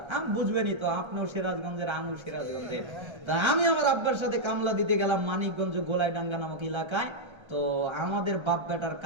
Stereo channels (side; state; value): left; late; 1.3 ms